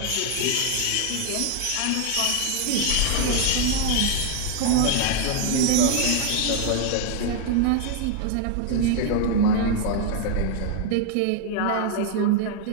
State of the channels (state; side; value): different; both; correlation 0.00